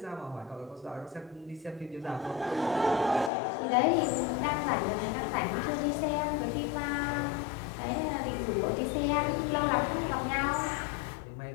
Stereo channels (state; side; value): drops out; right; at 3.3 s